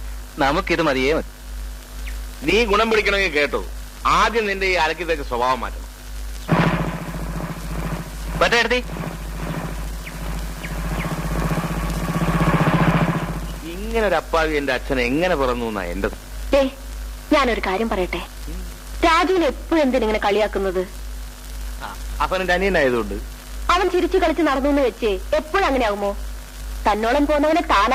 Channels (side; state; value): both; identical; correlation 1.00